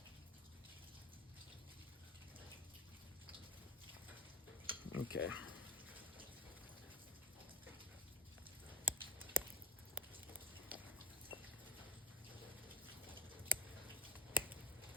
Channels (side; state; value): both; normal; correlation 0.21